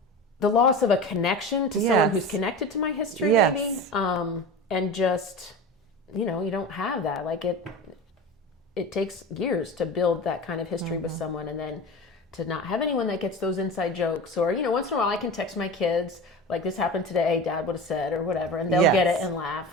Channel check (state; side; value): normal; both; correlation 0.31